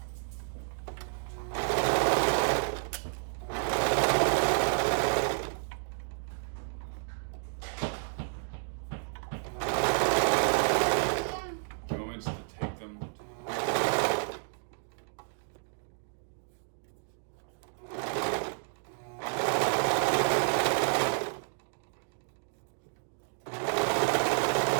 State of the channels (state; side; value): silent; left; digital silence